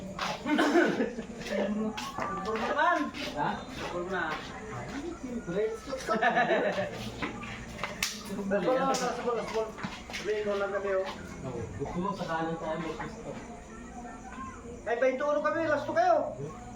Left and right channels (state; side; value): identical; both; correlation 1.00